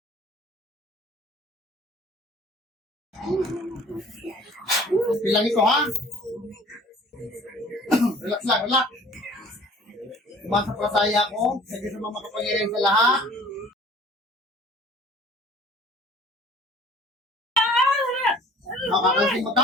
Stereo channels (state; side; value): normal; both; correlation 0.50